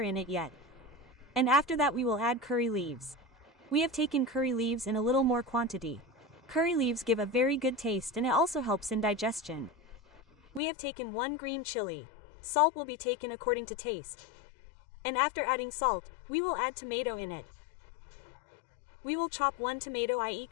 it yet. And after that we will add curry leaves. We have taken curry leaves in a little more quantity. Curry leaves give a very good taste and it also helps in digestion. We have taken 1 green chili. Salt will be taken according to taste. And after adding salt, we will add tomato in it. We will chop 1 tomato, i.e.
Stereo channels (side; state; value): right; drops out; at 10.6 s